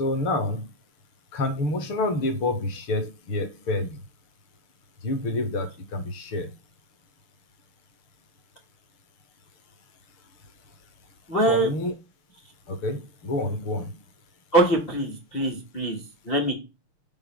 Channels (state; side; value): late; right; 6.6 ms